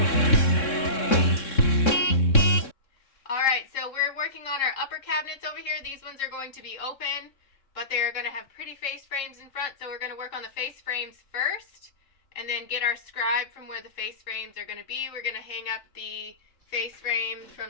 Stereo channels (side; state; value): right; late; 3.6 ms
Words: Alright, so we're working on our upper cabinets over here. These ones are going to be open, but they're going to have pretty face frames in front, so we're going to work on the face frames first, and then get our scribe from where the face frames are going to be. We're going to hang up the face frame